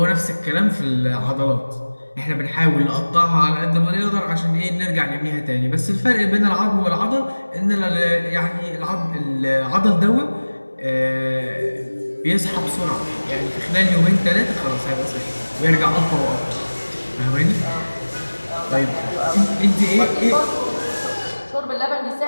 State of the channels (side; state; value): both; inverted; correlation -1.00